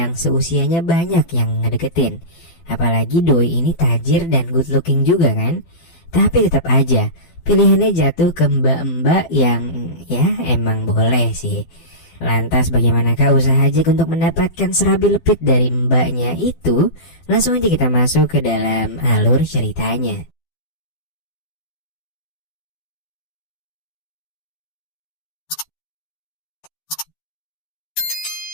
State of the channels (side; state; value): right; late; 12 ms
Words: seusianya banyak yang ngedeketin. Apalagi doi ini tajir dan good looking juga kan. Tapi tetap aja pilihannya jatuh ke mbak-mbak yang ya emang boleh sih. Lantas bagaimanakah usaha Jack untuk mendapatkan serabi lepit dari mbaknya itu? Langsung aja kita masuk ke dalam alur ceritanya.